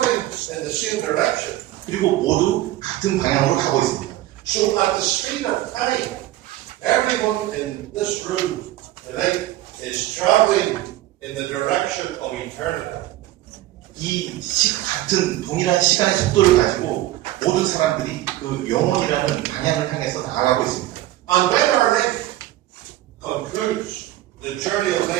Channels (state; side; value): quieter; left; 15.3 dB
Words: in the same direction. 그리고 모두 같은 방향으로 가고 있습니다. So at the speed of time, everyone in this room tonight is traveling in the direction of eternity. 같은 동일한 시간의 속도를 가지고 모든 사람들이 그 영원이라는 방향을 향해서 나아가고 있습니다. And when our life concludes, the journey of